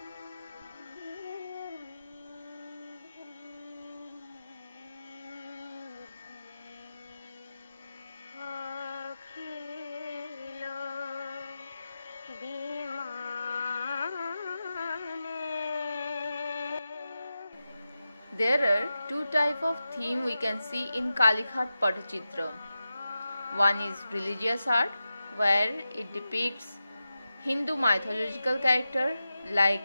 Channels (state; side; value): inverted; both; correlation -0.92